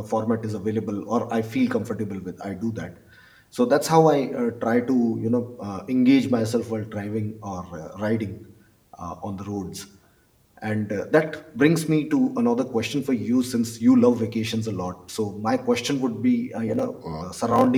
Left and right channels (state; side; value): identical; both; correlation 1.00